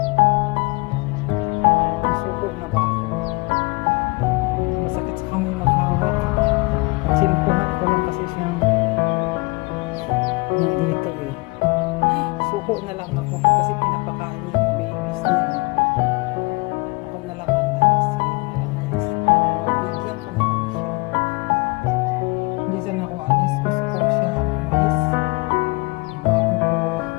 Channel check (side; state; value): right; quieter; 26.0 dB